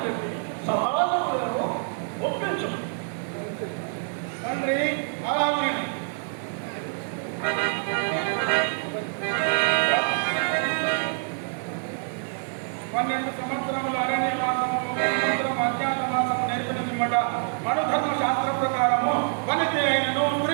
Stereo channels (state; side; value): silent; left; digital silence